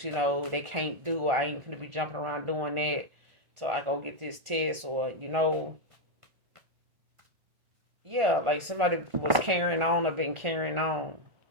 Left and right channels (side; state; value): left; late; 1.5 ms